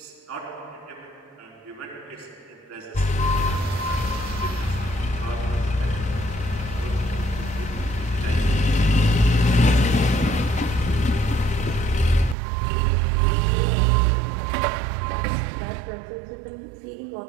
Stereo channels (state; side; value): drops out; left; at 12.4 s